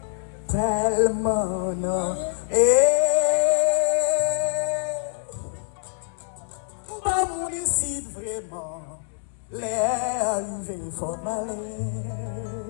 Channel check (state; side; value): silent; right; digital silence